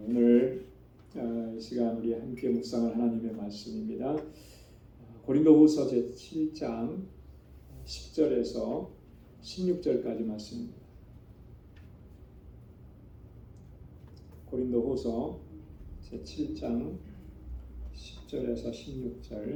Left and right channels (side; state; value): both; identical; correlation 1.00